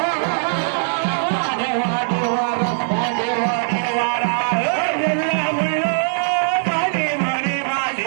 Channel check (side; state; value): left; silent; digital silence